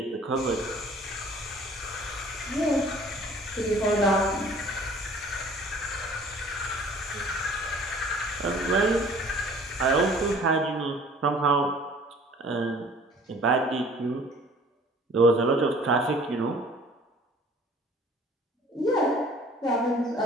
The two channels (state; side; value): normal; both; correlation 0.52